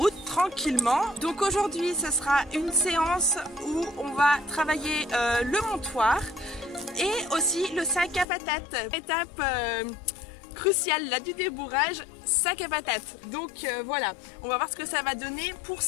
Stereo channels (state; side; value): drops out; right; at 8.2 s